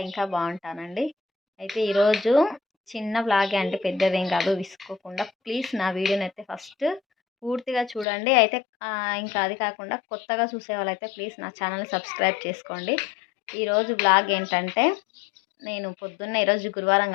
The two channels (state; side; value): drops out; right; at 8.1 s